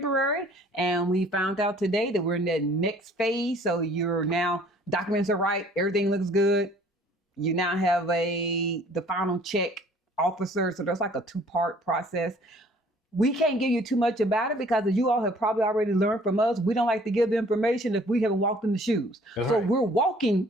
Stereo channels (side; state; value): both; normal; correlation 0.55